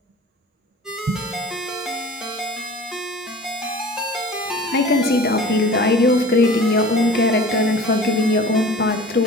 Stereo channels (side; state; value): both; normal; correlation 0.42